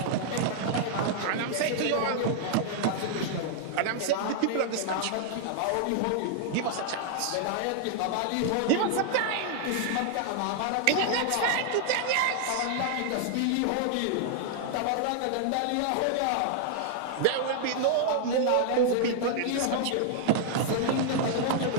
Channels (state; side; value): different; both; correlation -0.01